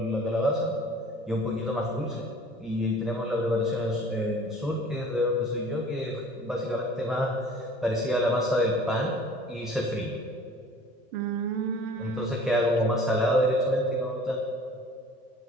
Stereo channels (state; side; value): normal; both; correlation 0.48